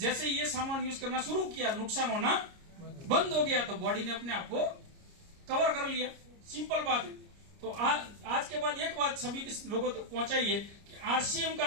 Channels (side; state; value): left; late; 29 ms